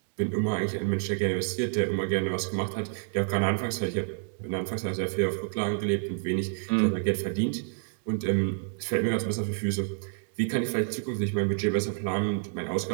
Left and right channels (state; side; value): silent; left; digital silence